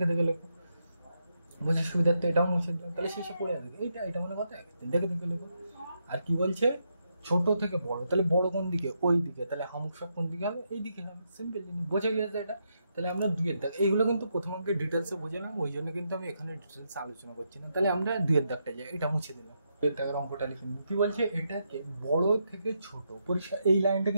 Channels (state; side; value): inverted; both; correlation -0.81